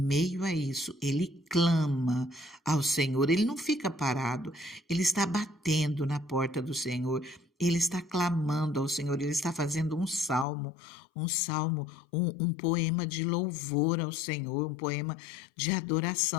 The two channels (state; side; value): drops out; right; at 10.5 s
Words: a isso, ele clama ao Senhor, ele não fica parado, ele está batendo na porta do Senhor, ele está clamando ao Senhor, ele está fazendo um poema de louvor ao Senhor, um poema de